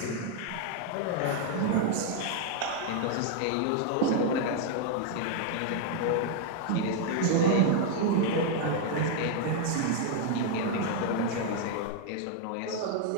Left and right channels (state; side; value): different; both; correlation 0.00